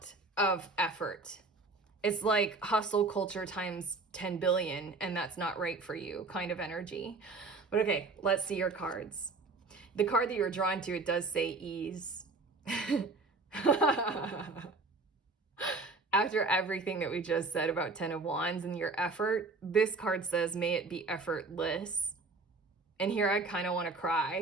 of effort. It's like hustle culture times 10 billion, and that's not right for you kind of energy. But okay, let's see your cards. The card that you're drawn to, it does say ease. After everything that we just said about 10 of Wands and your effort, this card says, may it be effortless. And here I kind of want to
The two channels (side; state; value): left; quieter; 3.6 dB